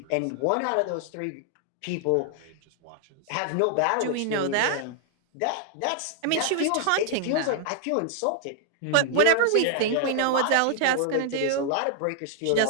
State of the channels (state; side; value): different; both; correlation 0.00